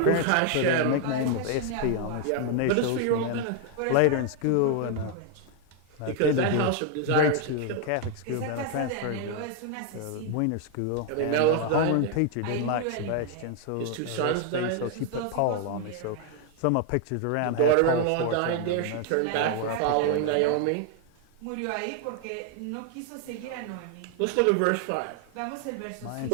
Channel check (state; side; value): different; both; correlation 0.00